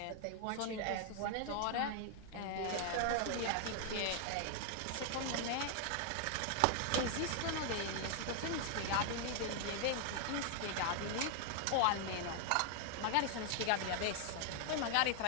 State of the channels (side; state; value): both; different; correlation 0.00